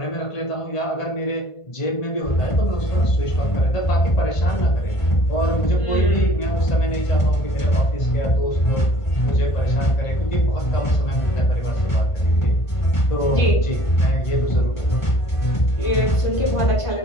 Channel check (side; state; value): right; late; 1.5 ms